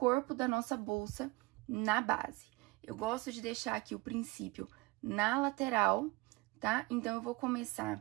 da nossa bolsa na base. Eu gosto de deixar aqui o princípio na lateral, tá? Então, eu vou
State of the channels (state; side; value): quieter; left; 23.4 dB